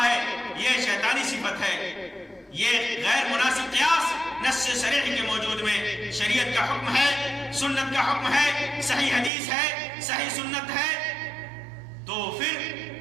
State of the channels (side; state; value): left; drops out; at 9.3 s